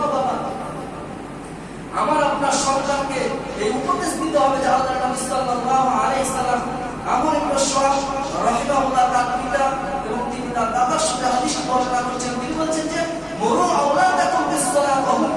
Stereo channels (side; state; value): both; identical; correlation 1.00